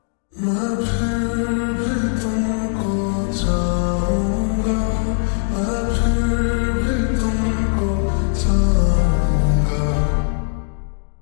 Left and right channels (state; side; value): silent; right; digital silence